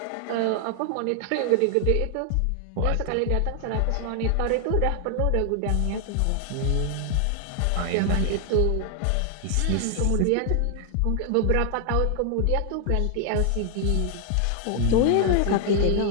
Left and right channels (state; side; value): different; both; correlation 0.00